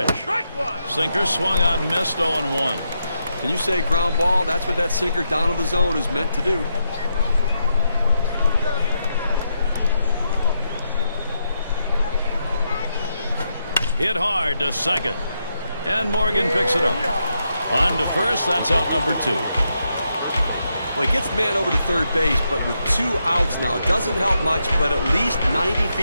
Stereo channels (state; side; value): inverted; both; correlation -0.82